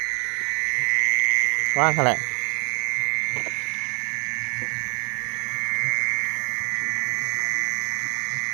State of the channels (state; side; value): quieter; left; 33.7 dB